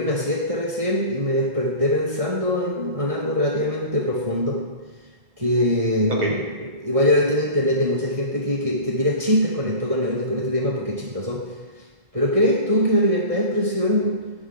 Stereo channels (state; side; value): late; left; 1.6 ms